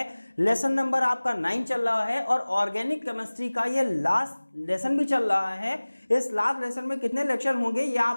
लेसन नंबर आपका 9 चल रहा है और ऑर्गेनिक केमिस्ट्री का ये लास्ट लेसन भी चल रहा है। इस लास्ट लेसन में कितने लेक्चर होंगे ये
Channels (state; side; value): inverted; both; correlation -1.00